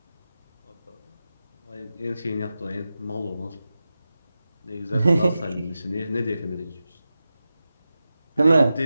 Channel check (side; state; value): both; inverted; correlation -0.93